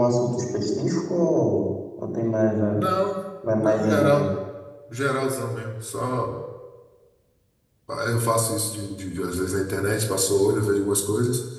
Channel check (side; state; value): both; identical; correlation 1.00